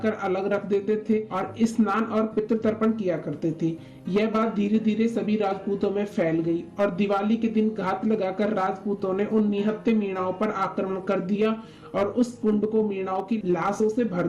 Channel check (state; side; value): identical; both; correlation 1.00